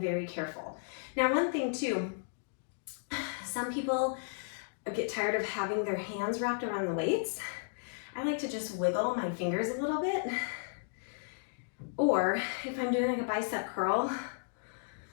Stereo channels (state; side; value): silent; right; digital silence